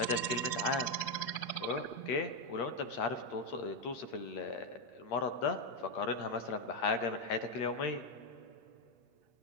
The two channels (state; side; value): late; right; 8.5 ms